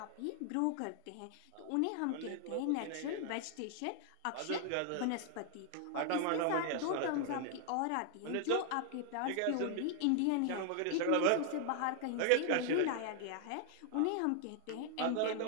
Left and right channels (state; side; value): different; both; correlation 0.00